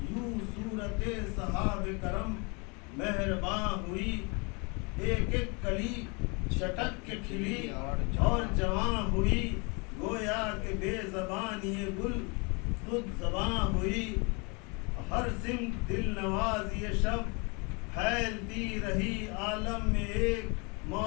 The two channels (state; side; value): quieter; right; 31.2 dB